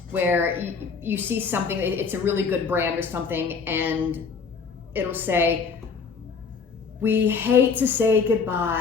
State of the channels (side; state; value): right; quieter; 5.4 dB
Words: where you see something, it's a really good brand or something, and it'll say, we hate to say